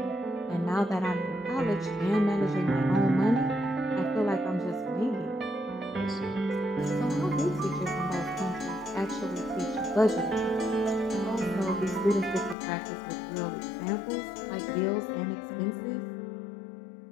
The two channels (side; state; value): right; drops out; at 12.6 s